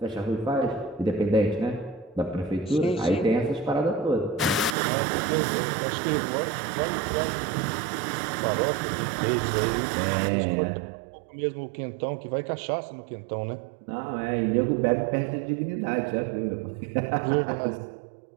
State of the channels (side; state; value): left; drops out; at 4.8 s